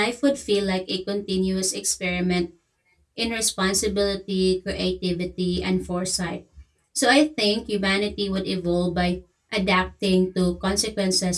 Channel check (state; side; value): identical; both; correlation 1.00